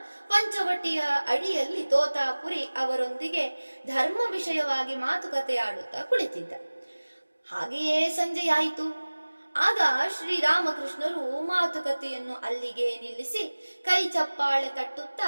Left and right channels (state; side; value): inverted; both; correlation -1.00